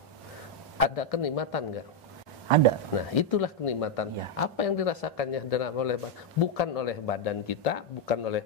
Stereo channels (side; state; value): both; normal; correlation 0.01